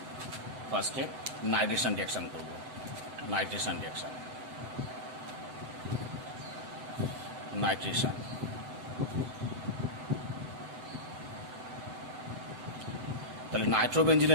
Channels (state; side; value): late; left; 7.9 ms